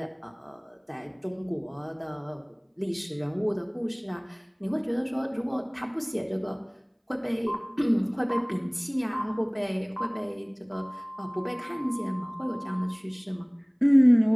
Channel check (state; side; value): identical; both; correlation 1.00